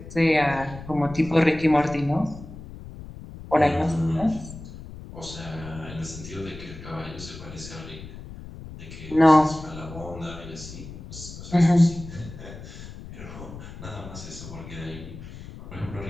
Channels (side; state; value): left; noise; rumble, 13 dB below the sound